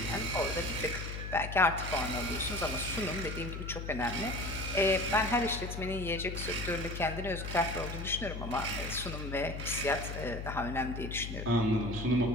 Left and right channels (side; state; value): left; noise; hum, 6 dB below the sound